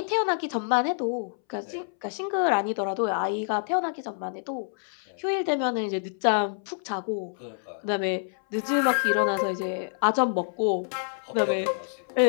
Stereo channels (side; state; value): right; silent; 60 dB below the other